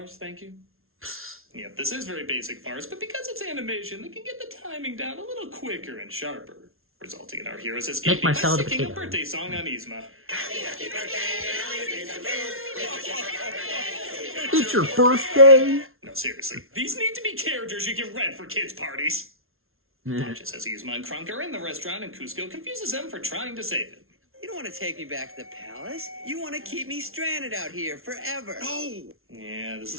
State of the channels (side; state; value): left; late; 0.61 ms